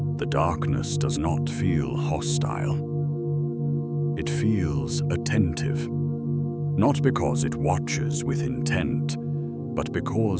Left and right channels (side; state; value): both; identical; correlation 1.00